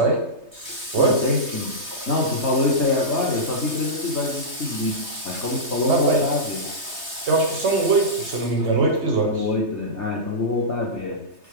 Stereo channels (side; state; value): left; late; 3.2 ms